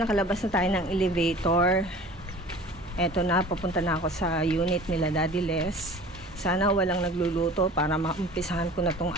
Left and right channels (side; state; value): both; normal; correlation 0.43